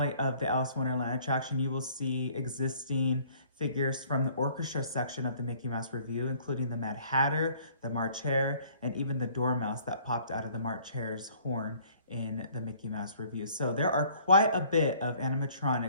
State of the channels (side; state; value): both; inverted; correlation -0.57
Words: of the Alice in Wonderland attraction, you will see existing figures from the orchestra section of the Mickey Mouse Revue, including the Mad Hatter, the March Hare, and even the Dormouse that popped out of the March Hare's horn in the Mickey Mouse Revue. So there are quite a bit of